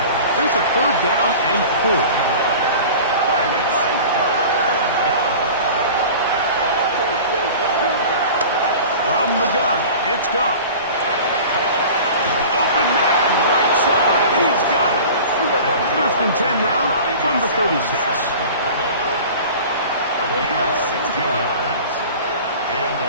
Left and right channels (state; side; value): inverted; both; correlation -0.39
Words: There's a 3rd down and 4. From the gun, it's Goff. Open man, right side, he's got it. 1st and 10 now from the 36. A gain of 16 yards. And the